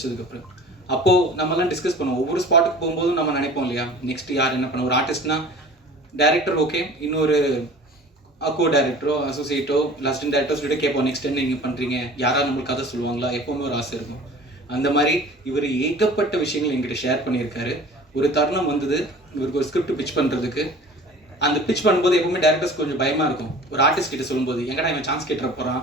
அப்போது நம்மலாம் டிஸ்கஸ் பண்ணுவோம். ஒவ்வொரு ஸ்பாட்டுக்கு போகும்போதும் நம்ம நினைப்போம் இல்லையா, நெக்ஸ்ட் யார் என்ன பண்ண. ஒரு ஆர்டிஸ்ட்னா டைரக்டர் ஓகே, இன்னொரு கோ டைரக்டரோ அசோசியேட்டோ அசிஸ்டன்ட் டைரக்டர் சொல்லிட்டு கேட்போம், நெக்ஸ்ட் என்ன நீங்கள் பண்ணுறீங்க, யாராவது நம்மளுக்கு கதை சொல்லுவாங்களா, எப்போவுமே ஒரு ஆசை இருக்கும். அந்த மாதிரி இவர் ஏகப்பட்ட விஷயங்கள் எங்கிட்ட ஷேர் பண்ணியிருக்காரு. ஒரு தருணம் வந்தது இவருக்கு ஒரு ஸ்கிரிப்ட் பிச் பண்ணுறதுக்கு. அந்த பிச் பண்ணும்போது எப்பவுமே டேரக்டர்ஸ் கொஞ்சம் பயமாக இருக்கும். ஒரு ஆர்டிஸ்ட் கிட்ட சொல்லும்போது எங்கடா இவன் சான்ஸ் கேட்டுற போகிறான்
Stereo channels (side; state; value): both; normal; correlation 0.44